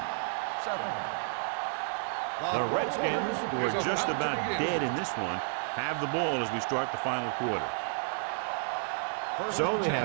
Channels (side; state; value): left; silent; 57 dB below the other